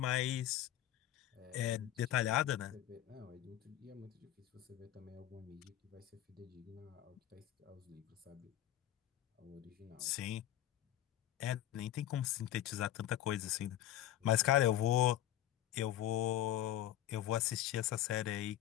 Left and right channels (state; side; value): quieter; right; 12.6 dB